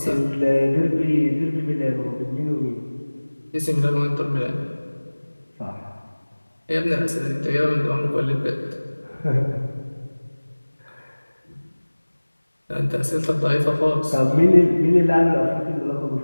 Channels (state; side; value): inverted; both; correlation -1.00